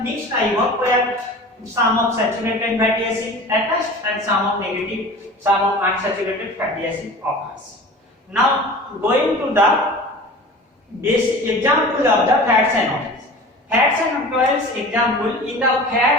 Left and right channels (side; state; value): both; normal; correlation 0.38